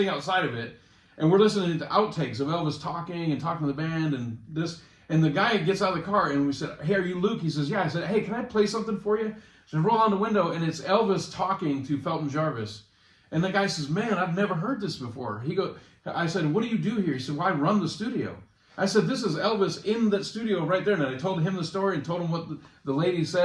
outside of it, and we're listening to outtakes of Elvis talking to the band and this. And the guy gets out of the car, and we said, hey, are you Luke? He says, yeah. I said, hey, can I play something for you? So I roll down the window, and it's Elvis talking to Felton Jarvis. And the guy says, man, I've never heard this before. I said, what do you do here? He said, well, I run the studio. I said, this is Elvis in that studio right there. And I told him the story and told him what the lady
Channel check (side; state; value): both; identical; correlation 1.00